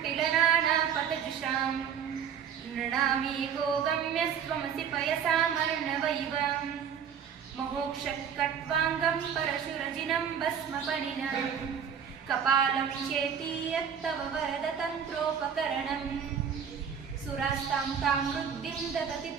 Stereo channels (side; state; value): left; quieter; 7.8 dB